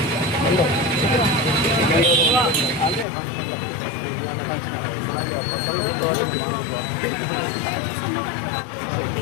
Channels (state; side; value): drops out; right; at 3.1 s